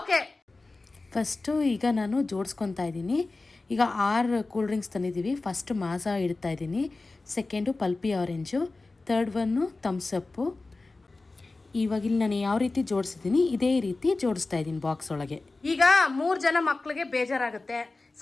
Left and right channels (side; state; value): right; quieter; 3.4 dB